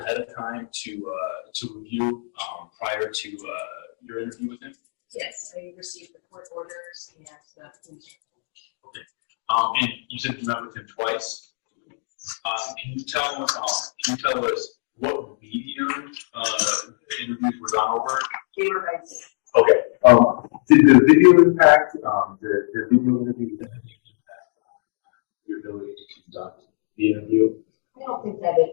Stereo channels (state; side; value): silent; right; digital silence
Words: of time to review prior to your interview with him? Yes, I received the court orders and the police report. Okay, and you said you met with him twice. Can you tell us what medium the interviews were done over? They were by Zoom. Okay. Did the video impact the video interview impact your ability to conduct the interview? I don't think that it